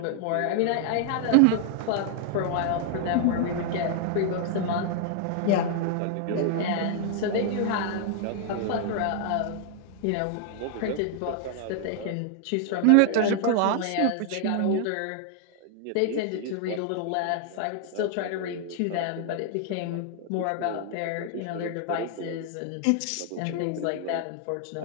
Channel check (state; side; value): different; both; correlation 0.00